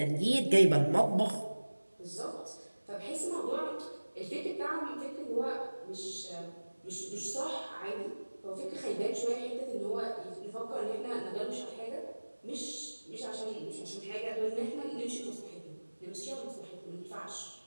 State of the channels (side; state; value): both; inverted; correlation -1.00